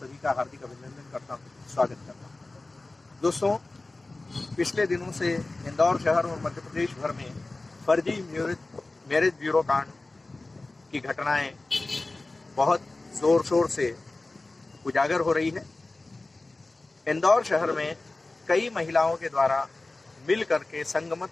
का हार्दिक अभिनंदन करता हूँ, स्वागत करता हूँ। दोस्तों, पिछले दिनों से इंदौर शहर और मध्य प्रदेश भर में फर्जी मैरिज ब्यूरो कांड की घटनाएं बहुत जोर शोर से उजागर हो रही है। इंदौर शहर में कई महिलाओं के द्वारा मिल करके संगमत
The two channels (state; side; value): quieter; right; 3.1 dB